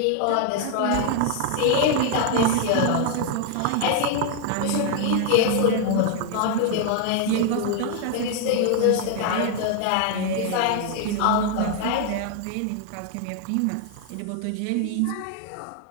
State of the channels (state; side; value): different; both; correlation 0.00